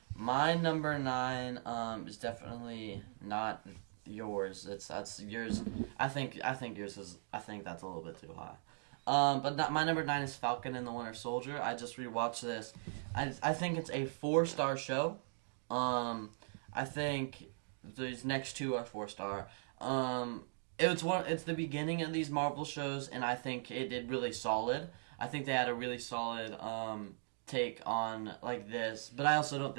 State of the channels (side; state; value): left; silent; digital silence